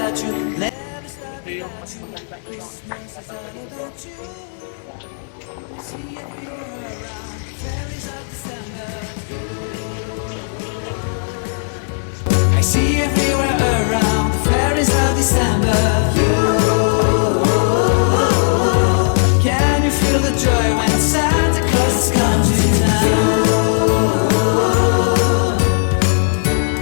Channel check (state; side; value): silent; right; 64 dB below the other